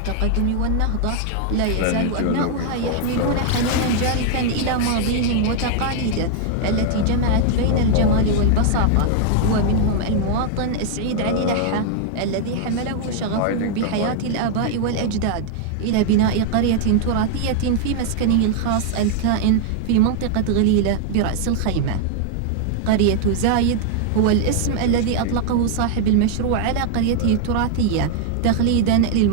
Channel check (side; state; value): both; different; correlation 0.00